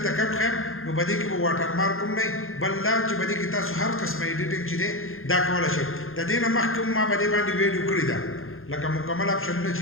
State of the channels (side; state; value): right; late; 0.60 ms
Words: کوم ښیم نو په دې کې به واټر مارک هم نه بل دا چې په دې کې تاسو هر قسمه ایډیټینګ چې دی دا کولی شئ د دې نه مخکې ما په دې باندې ویډیو کړې ده لکه مکمل اپشنونه